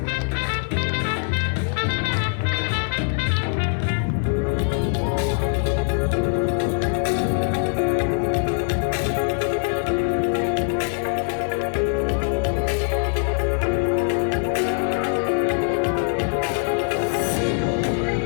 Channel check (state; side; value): silent; right; 64 dB below the other